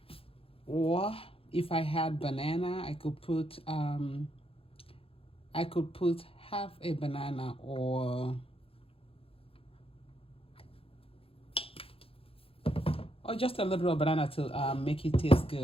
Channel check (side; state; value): right; late; 0.27 ms